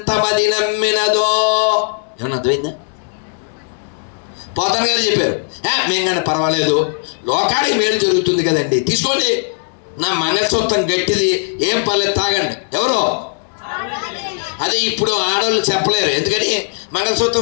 నమ్మినదో. ఏమన్నా అర్థమైందా? పోతన గారు చెప్పారు, మింగండి పర్వాలేదు, లోకానికి మేలు జరుగుతుంది కదండి, తీసుకోండి, నా మంగళసూత్రం గట్టిది, ఏం పర్లేదు తాగండి. ఎవరో అదే ఇప్పుడు ఆడవాళ్ళు చెప్పలేరు. ఎందుకని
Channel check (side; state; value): right; silent; 62 dB below the other